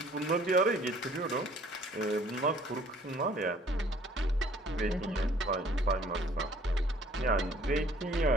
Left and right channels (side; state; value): both; normal; correlation 0.56